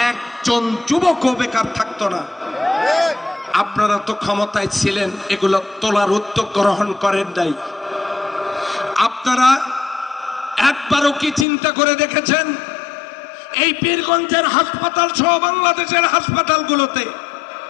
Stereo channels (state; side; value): drops out; right; at 11.5 s